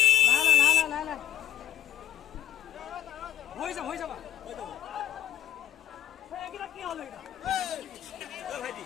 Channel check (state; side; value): quieter; right; 11.4 dB